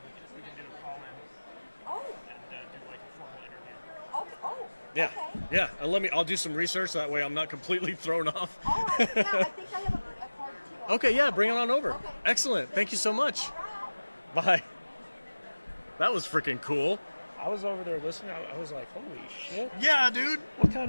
We can do a call in Oh. and do like a formal interview. Okay. Oh. Yeah. Okay. Yeah. And I'll do some research. That way I'm not completely thrown off. All right. Yeah, I think I have a card too. Okay. Yeah. Bring it on over. Okay. Excellent. Thank you so much. All right. Bye. That was freaking cool. I was over there listening. I was like, holy shit. Yeah, dude. What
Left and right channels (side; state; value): both; inverted; correlation -1.00